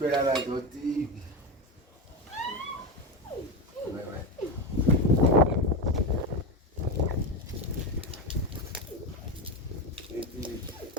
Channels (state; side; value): normal; both; correlation 0.17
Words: از دو دیگ